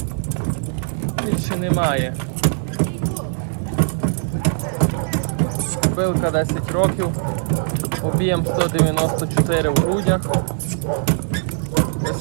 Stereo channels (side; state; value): left; silent; digital silence